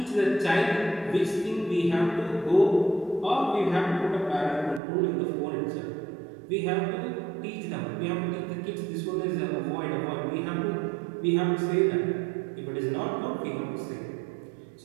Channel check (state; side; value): drops out; left; at 4.8 s